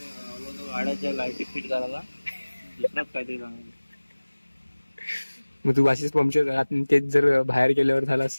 गाड्याच्या लाईटी फिट करायला दुसराच काहीतरी सांगायला. मग तू अशीच पंक्चर झाला, तेच जर बाहेर गेल्यावर झाला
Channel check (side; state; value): both; inverted; correlation -1.00